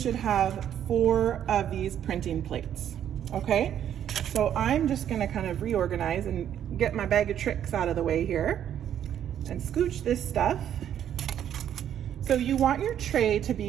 have 4 of these printing plates, okay? So I'm just gonna kind of reorganize and get my bag of tricks out of the way here and scooch this stuff. So you want your tray to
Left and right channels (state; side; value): quieter; left; 10.0 dB